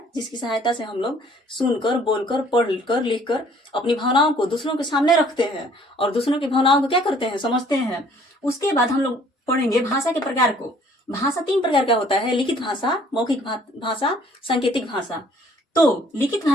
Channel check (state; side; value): normal; both; correlation 0.58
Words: जिसकी सहायता से हम लोग सुनकर, बोलकर, पढ़कर, लिखकर अपनी भावनाओं को दूसरों के सामने रखते हैं और दूसरों की भावनाओं को क्या करते हैं, समझते हैं। उसके बाद हम लोग पढ़ेंगे भाषा के प्रकार को। भाषा 3 प्रकार का होता है, लिखित भाषा, मौखिक भाषा, सांकेतिक भाषा। तो लिखित